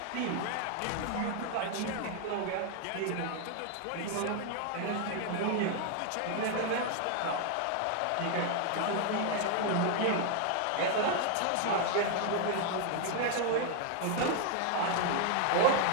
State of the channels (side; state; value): both; different; correlation 0.00